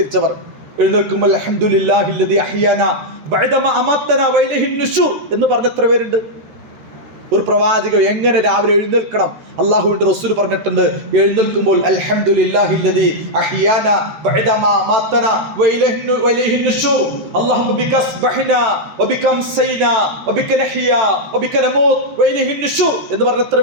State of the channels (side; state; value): left; late; 14 ms